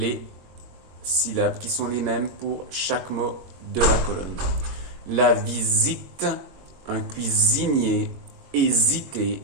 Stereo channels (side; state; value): left; late; 22 ms